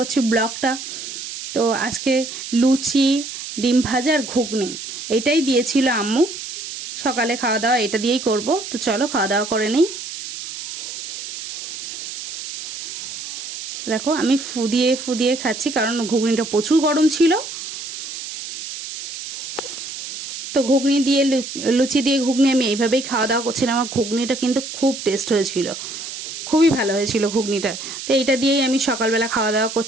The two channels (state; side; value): noise; right; hiss, 9 dB below the sound